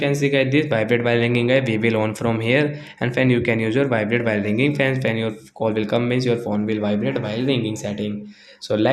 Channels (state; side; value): identical; both; correlation 1.00